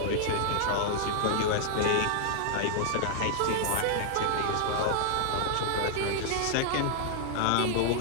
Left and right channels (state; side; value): different; both; correlation -0.01